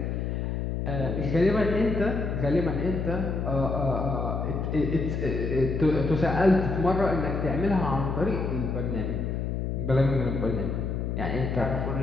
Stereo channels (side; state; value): left; noise; hum, 2 dB below the sound